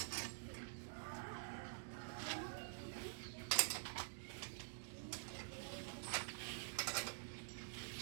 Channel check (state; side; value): silent; left; digital silence